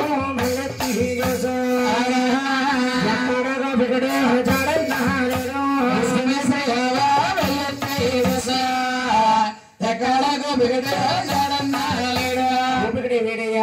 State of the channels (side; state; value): both; identical; correlation 1.00